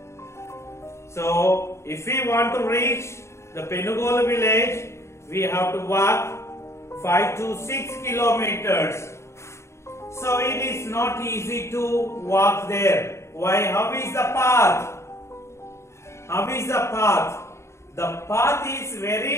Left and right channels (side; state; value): right; late; 0.13 ms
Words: So if we want to reach the Penugolu village, we have to walk 5 to 6 kilometers. So it is not easy to walk there. Why? How is the path? How is the path? The path is